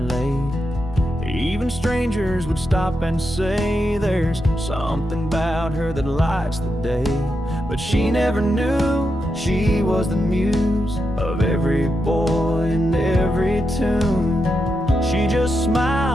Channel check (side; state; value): both; normal; correlation 0.85